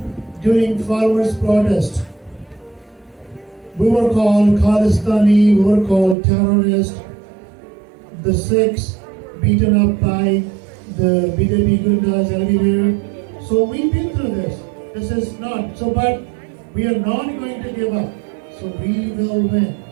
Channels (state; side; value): drops out; left; at 6.2 s